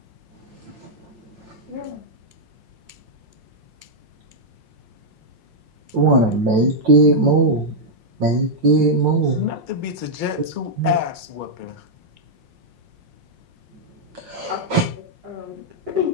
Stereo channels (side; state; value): left; late; 5.6 ms